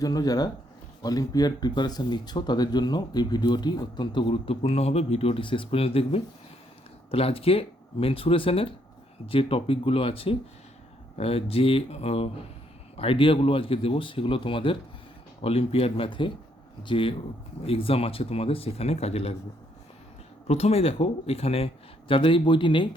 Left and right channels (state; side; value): normal; both; correlation 0.72